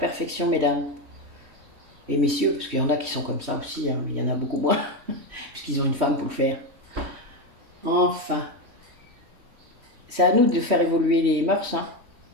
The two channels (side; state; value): left; late; 3.1 ms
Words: mesdames. Et messieurs, parce qu'il y en a qui sont comme ça aussi, hein, mais il y en a beaucoup moins, puisqu'ils ont une femme pour le faire. Enfin, c'est à nous de faire évoluer les mœurs, hein.